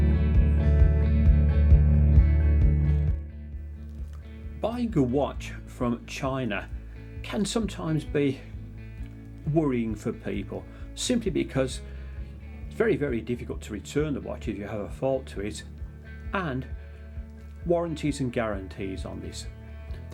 Buying a watch from China can sometimes be worrying for people, simply because it's very difficult to return the watch if you have a fault to it, and warranties and guarantees on this.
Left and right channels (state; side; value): identical; both; correlation 1.00